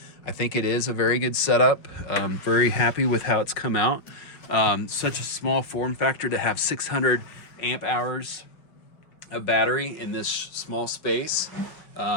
I think it is a very good setup. I'm very happy with how it's come out. Such a small form factor to have 600 amp hours of battery in this small space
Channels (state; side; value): late; right; 5.4 ms